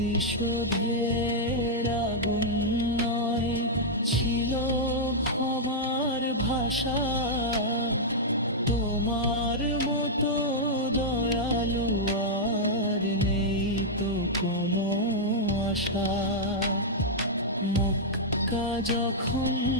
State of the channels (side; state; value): both; normal; correlation -0.06